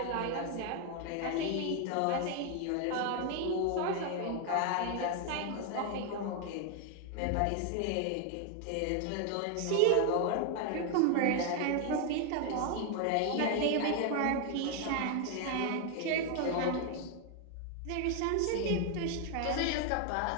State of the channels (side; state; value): both; different; correlation 0.01